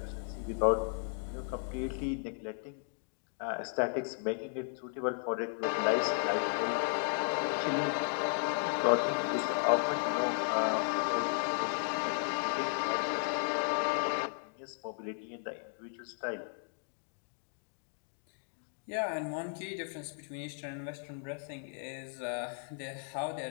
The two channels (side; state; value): right; silent; 54 dB below the other